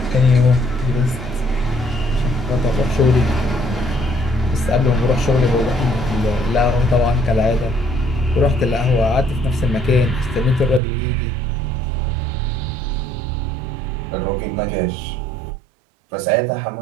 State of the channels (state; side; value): drops out; left; at 10.8 s